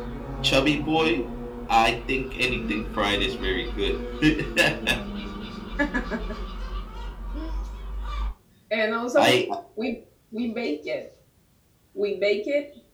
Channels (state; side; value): identical; both; correlation 1.00